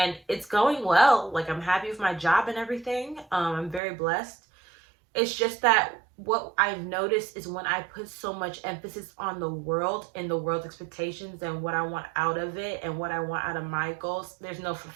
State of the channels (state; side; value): drops out; left; at 3.8 s